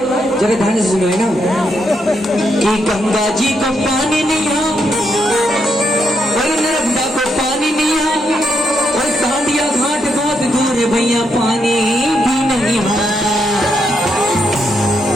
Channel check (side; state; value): both; normal; correlation 0.79